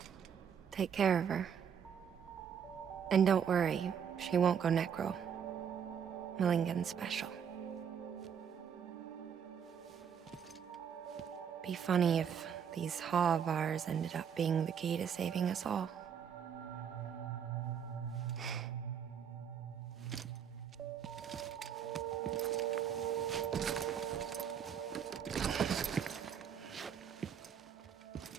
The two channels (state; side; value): quieter; left; 7.8 dB